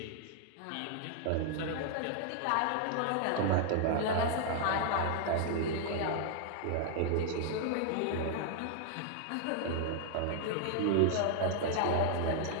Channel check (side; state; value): both; different; correlation 0.00